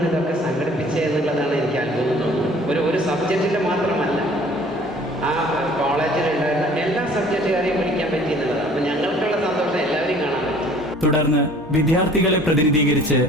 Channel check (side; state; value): both; normal; correlation 0.52